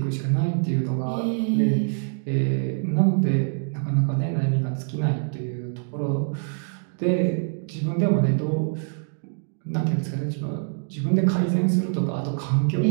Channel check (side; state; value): left; silent; 62 dB below the other